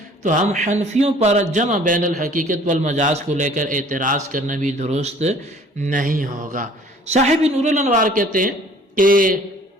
تو ہم حنفیوں پر جمع بین الحقیقت والمجاز کو لے کر اعتراض کرنا بھی درست نہیں ہوگا. صاحب نور الانوار کہتے ہیں کہ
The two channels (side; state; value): both; normal; correlation 0.53